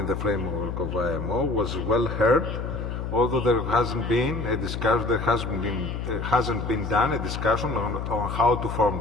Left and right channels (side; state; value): left; noise; hum, 4 dB below the sound